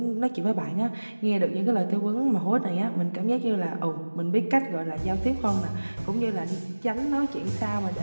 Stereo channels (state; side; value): inverted; both; correlation -1.00